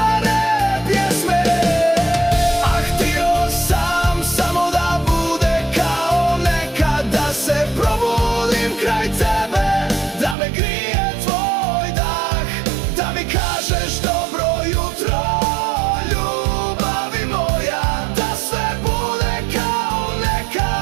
pjesme? Ah, htio sam samo da bude kao nekad, da se probudim kraj tebe, da me grije tvoj dah, da mi kažeš dobro jutro, ljubavi moja, da sve bude kao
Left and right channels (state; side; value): drops out; left; at 10.4 s